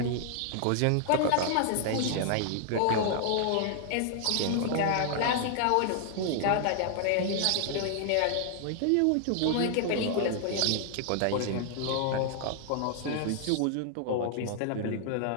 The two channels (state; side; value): different; both; correlation 0.00